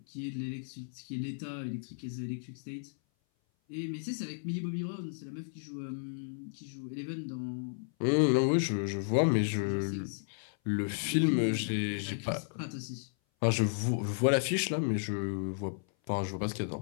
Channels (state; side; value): silent; right; 55 dB below the other